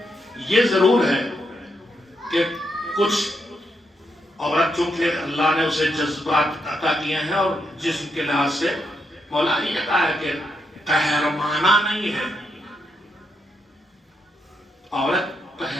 یہ ضرور ہے کہ کچھ عورت چونکہ اللہ نے اسے جذبات عطا کیے ہیں اور جسم کے لحاظ سے مولا نے یہ کہا ہے کہ قہرمانہ نہیں ہے، عورت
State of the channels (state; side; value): normal; both; correlation 0.80